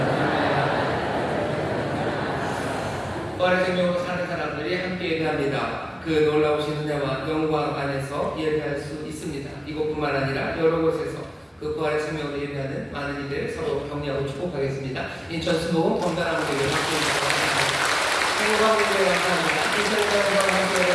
부활의 생명으로 사는 사람들이 함께 예배합니다. 그 놀라우신 은혜와 영광 안에서 예배할 수 있습니다. 이곳뿐만 아니라 여러 곳에서 그 부활의 생명으로 예배하는 많은 이들 서로 격려하고 축복하겠습니다. 인천 수도 건강한 교회 함께 행복하게 감사합니다. 인천과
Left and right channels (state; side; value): identical; both; correlation 1.00